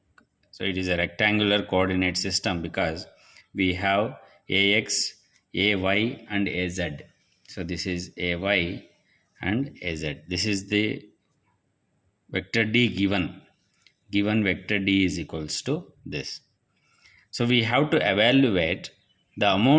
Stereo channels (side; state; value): both; identical; correlation 1.00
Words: So it is a rectangular coordinate system because we have AX, AY and AZ. So this is AY and AZ. This is the vector D given. Given vector D is equals to this. So we have to evaluate the